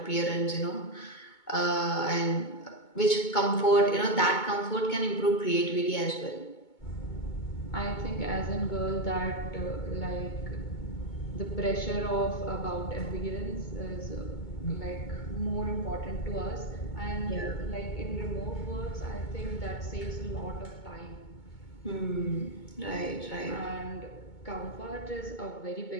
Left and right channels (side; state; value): right; late; 2.2 ms